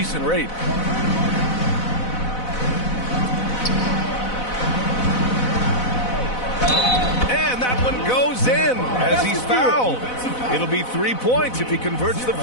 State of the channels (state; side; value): late; right; 4.0 ms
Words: rate. And that one goes in as he's fouled. It'll be 3 points if he converts the